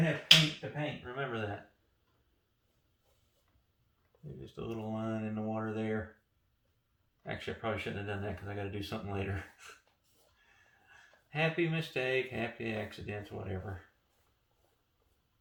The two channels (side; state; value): both; identical; correlation 1.00